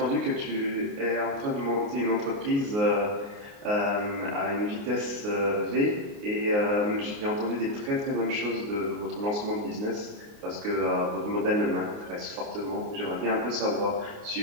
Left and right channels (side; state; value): left; late; 29 ms